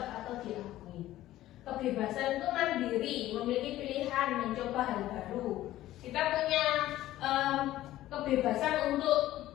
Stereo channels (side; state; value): right; quieter; 14.7 dB